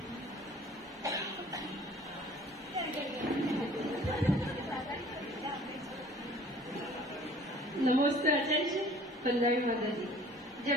नमस्ते आचार्य जी, पंजाबी माता जी।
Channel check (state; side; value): normal; both; correlation 0.51